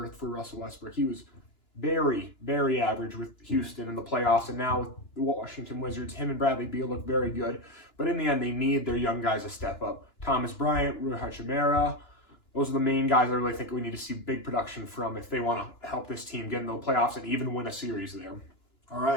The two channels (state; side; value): late; right; 2.9 ms